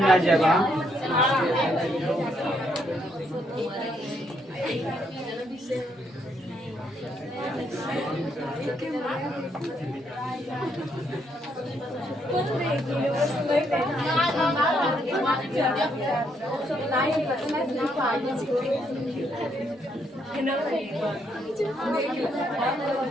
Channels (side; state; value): both; normal; correlation 0.74